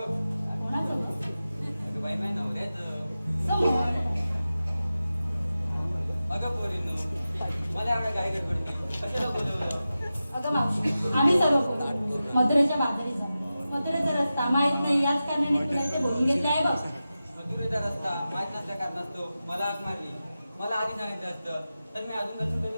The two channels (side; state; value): both; inverted; correlation -0.93